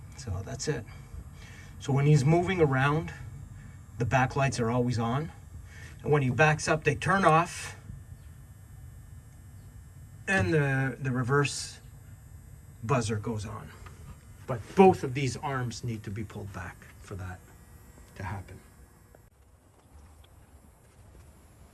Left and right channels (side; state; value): both; identical; correlation 1.00